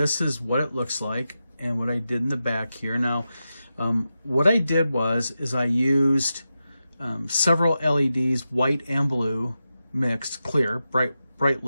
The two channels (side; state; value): both; inverted; correlation -0.90